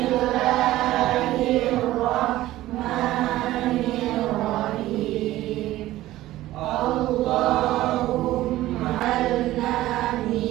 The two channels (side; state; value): left; quieter; 15.7 dB